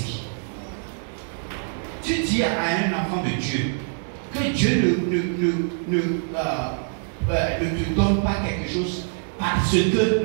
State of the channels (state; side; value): silent; left; digital silence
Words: Tu dis à un enfant de Dieu que Dieu ne te donne pas quelque chose parce que